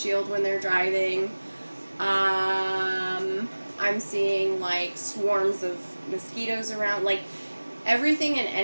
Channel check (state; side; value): inverted; both; correlation -1.00